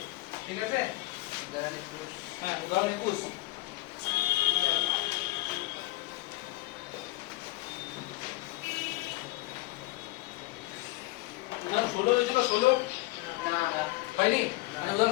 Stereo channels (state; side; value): quieter; right; 19.9 dB